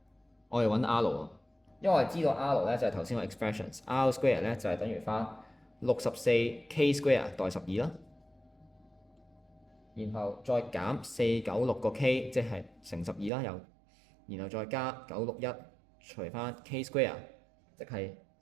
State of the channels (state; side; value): drops out; left; at 13.3 s